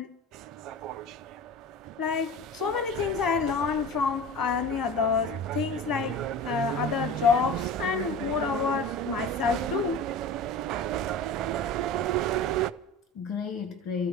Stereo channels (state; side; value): normal; both; correlation 0.34